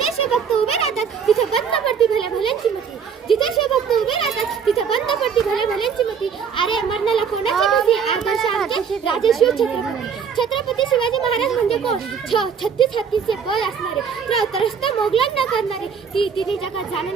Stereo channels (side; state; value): left; quieter; 6.8 dB